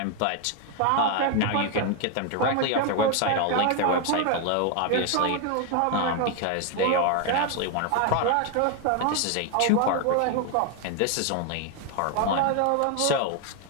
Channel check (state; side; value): different; both; correlation 0.01